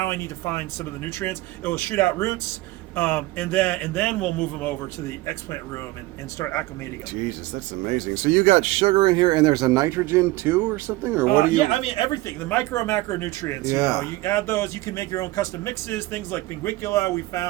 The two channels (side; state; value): left; quieter; 19.4 dB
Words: I need to find some of the nutrients. It will shoot out roots, and then we'll move them over to the explant room and start acclimating them. Jesus, that's amazing. So you got sugar in here, and there's a nitrogen too, or something, or what do you? Yeah, I mean everything. The micro and macro nutrients. Yeah. You add those. You can make your own custom mixes. Things like Pinguicula, we